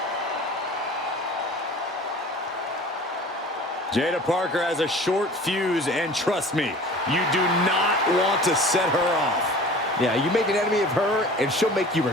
Jada Parker has a short fuse, and trust me, you do not want to set her off. Yeah, you make an enemy of her, and she'll make you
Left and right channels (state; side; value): normal; both; correlation 0.43